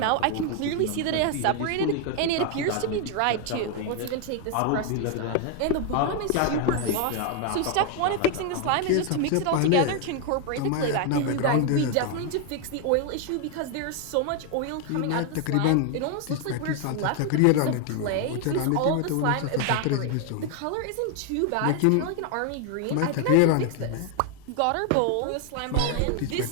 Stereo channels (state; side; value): different; both; correlation 0.00